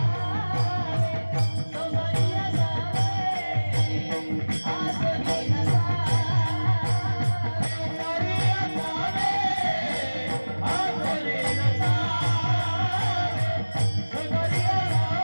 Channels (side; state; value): both; inverted; correlation -1.00